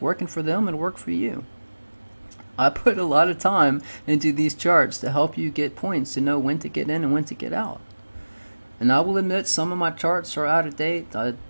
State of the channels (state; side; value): inverted; both; correlation -1.00